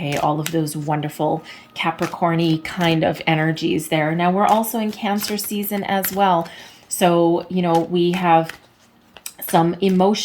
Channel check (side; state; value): both; identical; correlation 1.00